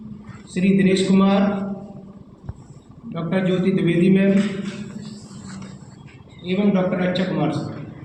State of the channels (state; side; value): identical; both; correlation 1.00